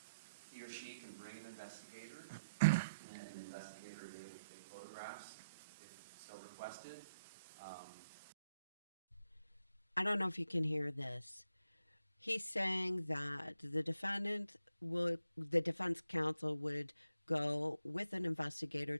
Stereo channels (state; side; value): inverted; both; correlation -0.78